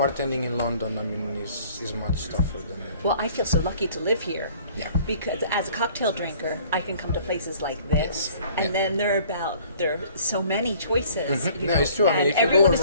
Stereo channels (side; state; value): both; inverted; correlation -0.54